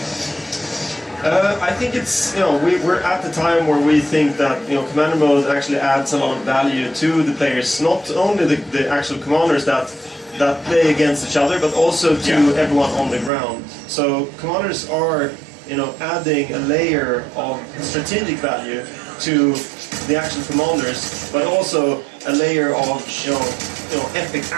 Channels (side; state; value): left; drops out; at 13.3 s